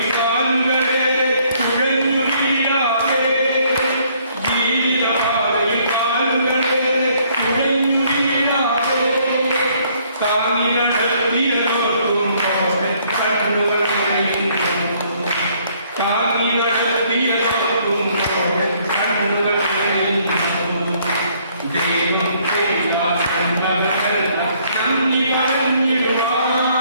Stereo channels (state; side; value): inverted; both; correlation -0.65